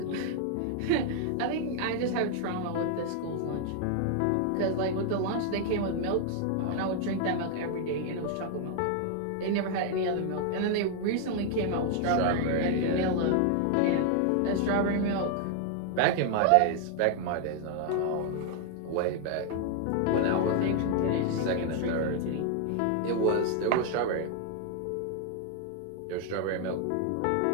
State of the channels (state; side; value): different; both; correlation 0.00